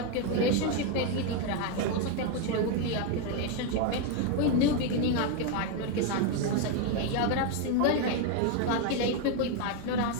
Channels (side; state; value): both; different; correlation 0.01